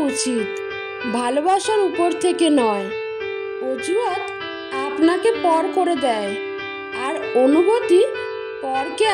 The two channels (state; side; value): identical; both; correlation 1.00